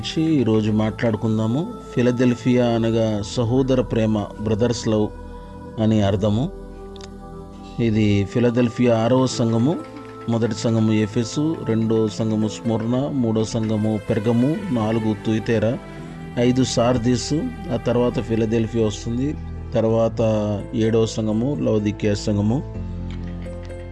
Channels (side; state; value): both; identical; correlation 1.00